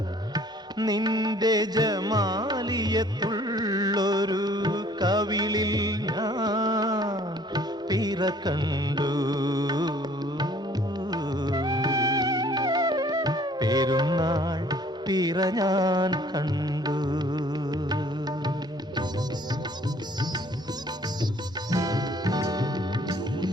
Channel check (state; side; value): normal; both; correlation 0.57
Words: നിന്റെ ജമാലിയത്തുള്ളൊരു കവിളിൽ ഞാൻ പിറ കണ്ടു പെരുന്നാൾ പിറ ഞാൻ കണ്ടു